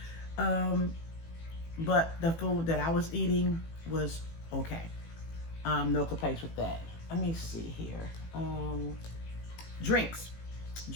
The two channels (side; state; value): right; late; 18 ms